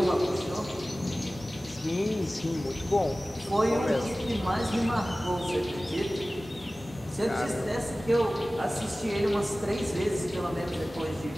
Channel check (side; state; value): both; normal; correlation 0.97